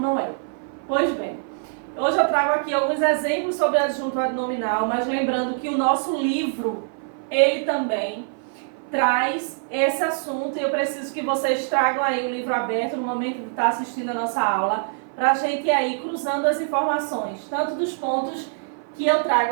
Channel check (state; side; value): silent; left; 57 dB below the other